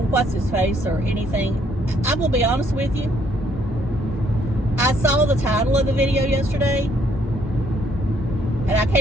his face or anything? I'm going to be honest with you. I saw the title of the video yesterday, and I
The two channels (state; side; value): normal; both; correlation 0.67